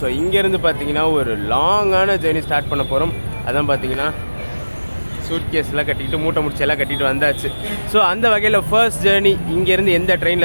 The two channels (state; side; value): inverted; both; correlation -1.00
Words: இங்கேருந்து பார்த்தீங்கன்னா ஒரு லாங்கான ஜேர்னி ஸ்டார்ட் பண்ண போகிறோம். அதான் பார்த்தீங்கன்னா சூட்கேஸ்லாம் கட்டிக்கிட்டு மூட்டை முடிச்செல்லாம் கட்டிட்டு வந்தாச்சு. ஸோ அந்த வகையில் ஃபர்ஸ்ட் ஜேர்னி இங்கேருந்து எந்த